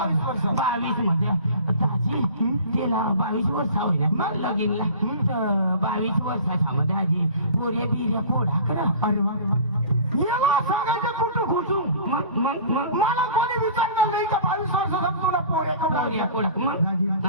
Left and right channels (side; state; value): both; inverted; correlation -0.42